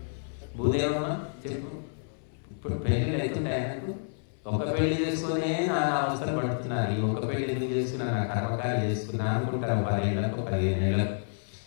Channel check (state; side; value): silent; right; 58 dB below the other